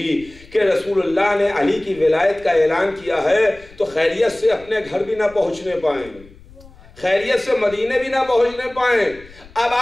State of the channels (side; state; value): left; noise; rumble, 23 dB below the sound